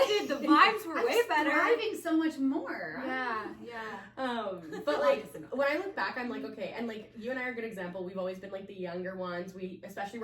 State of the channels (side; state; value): both; identical; correlation 1.00